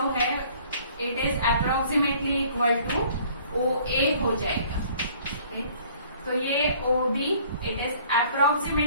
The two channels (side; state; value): both; inverted; correlation -0.55